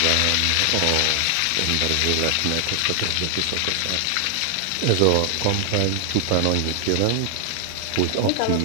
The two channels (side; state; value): both; different; correlation 0.00